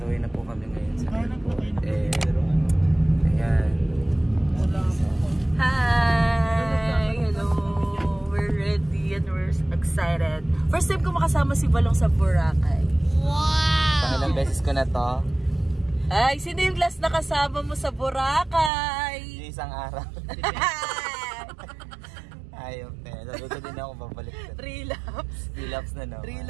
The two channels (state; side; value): drops out; left; at 18.7 s